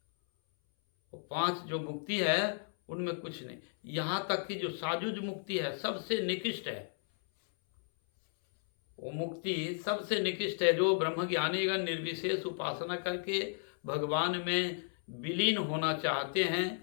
वो 5 जो मुक्ति है उनमें कुछ नहीं। यहाँ तक कि जो साजुज मुक्ति है सबसे निकृष्ट है, वो मुक्ति सबसे निकृष्ट है। जो ब्रह्मज्ञानीगण निर्विशेष उपासना करके भगवान में विलीन होना चाहते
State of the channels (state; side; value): silent; right; 55 dB below the other